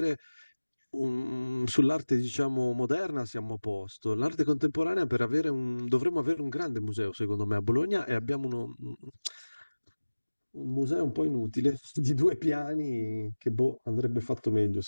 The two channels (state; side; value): inverted; both; correlation -1.00